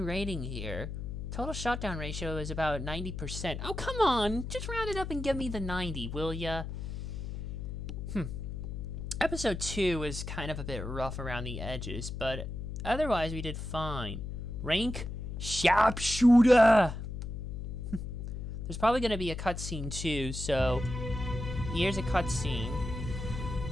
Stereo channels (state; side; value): noise; left; hum, 6 dB below the sound